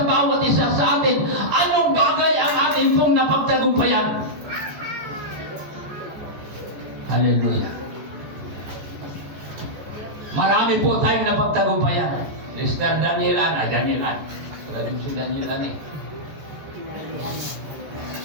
bawat isa sa atin. Anong bagay napagtagumpayan. Hallelujah. Marami po tayong napagtagumpayan. Sister Danielan. Wala din si Danielan eh.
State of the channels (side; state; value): left; late; 14 ms